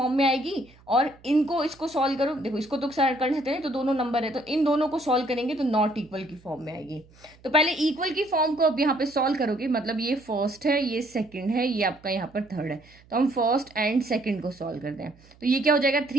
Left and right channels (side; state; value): right; noise; hum, 27 dB below the sound